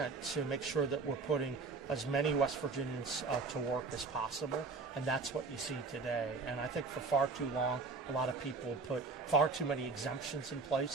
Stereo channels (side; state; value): left; quieter; 4.3 dB